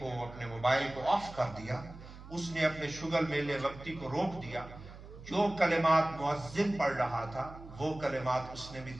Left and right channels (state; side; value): noise; right; hum, 16 dB below the sound